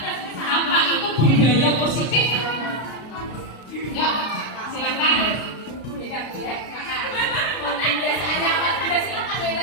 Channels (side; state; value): right; late; 33 ms